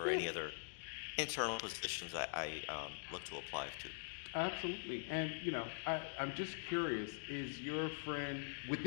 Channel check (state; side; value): silent; right; digital silence